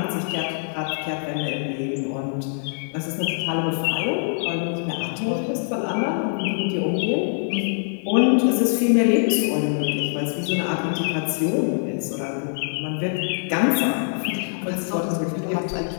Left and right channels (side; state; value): right; silent; digital silence